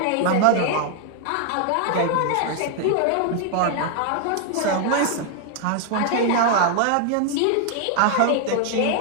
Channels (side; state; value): both; different; correlation 0.00